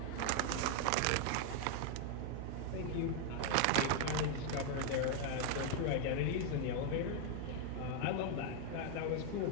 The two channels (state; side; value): different; both; correlation 0.00